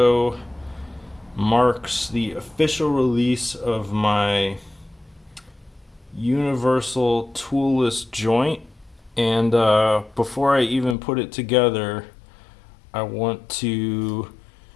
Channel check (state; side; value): drops out; right; at 11.0 s